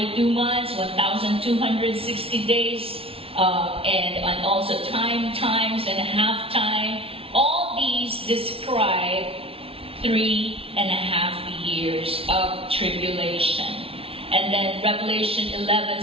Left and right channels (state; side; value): late; left; 0.27 ms